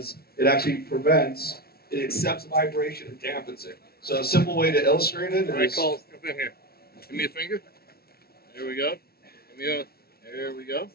it actually prevents, it accepts vibration and dampens it. So a simple way to illustrate it is... All right, Cole, jump in here. Give me a finger. There we go. Give me a... There we go.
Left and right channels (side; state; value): right; late; 0.44 ms